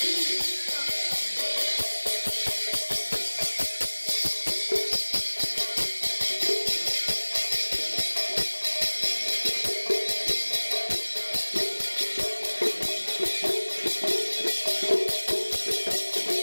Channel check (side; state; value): both; inverted; correlation -1.00